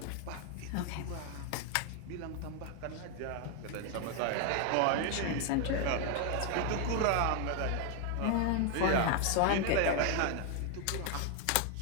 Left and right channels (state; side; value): different; both; correlation 0.01